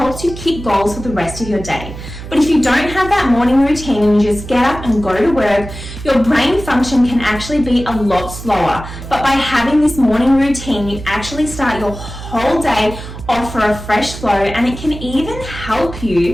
you keep goals for the rest of your day. But if you don't have that morning routine and you just get up and go to work, your brain function can actually be a lot slower. But by having this morning routine, you actually start your whole day off for a fresh flow, and it can even help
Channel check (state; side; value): noise; right; hum, 11 dB below the sound